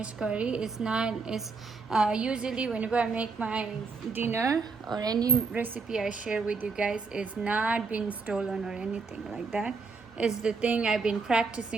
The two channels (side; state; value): left; quieter; 4.4 dB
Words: curry is not is usually whenever I make my dinner or any recipe I share with you guys, is not been stolen or anything like that. It's the thing I've been